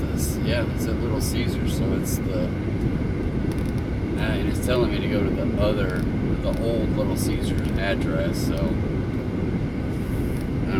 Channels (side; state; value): both; identical; correlation 1.00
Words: yeah, it's at Little Caesars, so it's and it's telling me to go to the old Little Caesars address, so I